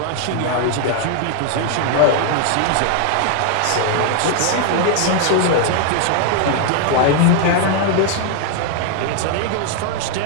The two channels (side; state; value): both; different; correlation 0.00